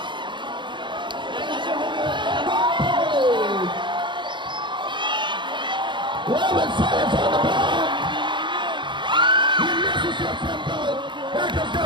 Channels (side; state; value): left; late; 0.23 ms